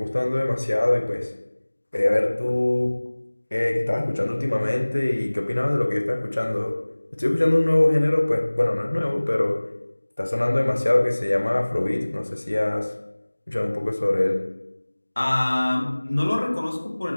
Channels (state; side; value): inverted; both; correlation -1.00